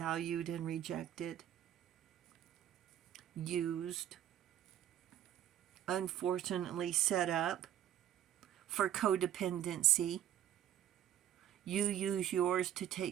and rejected, used, unfortunately set up for codependency. You use yours to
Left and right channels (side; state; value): left; quieter; 11.2 dB